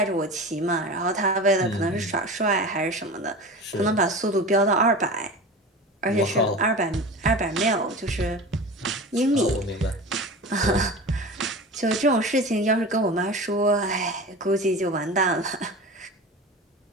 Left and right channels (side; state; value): both; normal; correlation 0.32